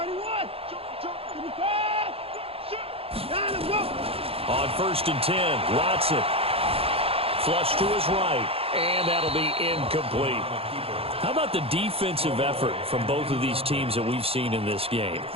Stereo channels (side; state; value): left; late; 0.28 ms